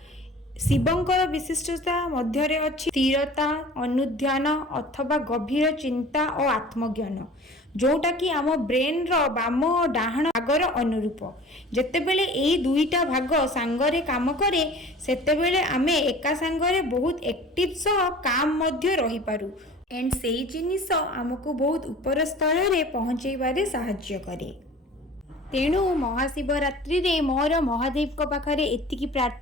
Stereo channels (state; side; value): normal; both; correlation 0.43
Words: शिवंकर विशिष्टता मध्यरे अछि स्थिरता अनुध्यान अथवा गभीर चिंता और आत्मज्ञान जोटा कि आम ब्रेन रो बाम और डाहाण भागर अनुरूप। जेतेबेले एई दुईटा भाग सांगरे काम करे सेतेबेले आमे एका सांगरे बहुत एक्टिव सह काम मध्य रही पारू एंड सेई जिनिस आमको बहुत ऊपर स्तर रे पहुंचेबारे सहाय्य करे। तेणु महाशिवरात्रि रे मोर महादेव को पाखरे एतिकी